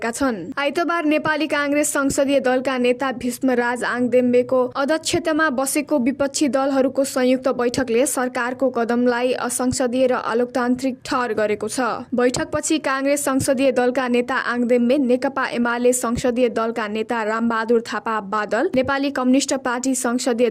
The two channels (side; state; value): both; identical; correlation 1.00